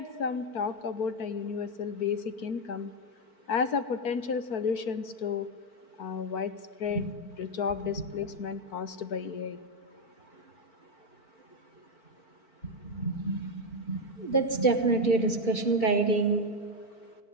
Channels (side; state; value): right; late; 4.5 ms